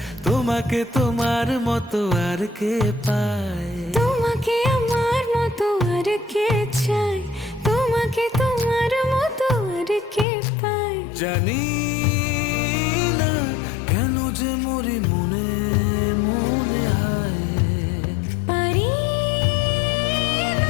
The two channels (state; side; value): drops out; right; at 10.2 s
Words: তোমাকে তোমার মতো আর কে পায়। তোমাকে আমার মতো আর কে চায়, তোমাকে তোমার মতো আর কে পায়। জানি না কেন যে মরি মনে মনে হায়। পারি